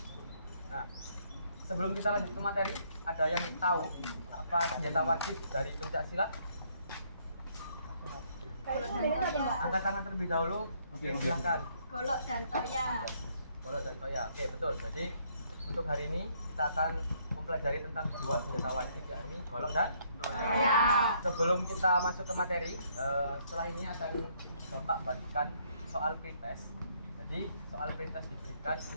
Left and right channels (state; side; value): inverted; both; correlation -0.68